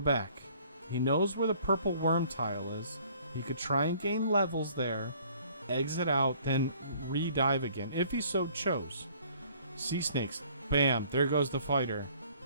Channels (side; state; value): both; inverted; correlation -0.57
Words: He knows where the purple worm tile is. He could try and gain levels there, exit out, then re-dive again, if he so chose. Sea snakes. Bam. There goes the fighter.